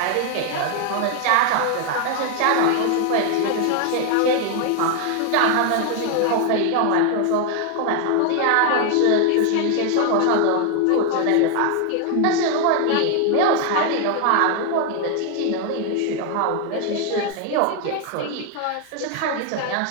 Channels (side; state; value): both; different; correlation 0.00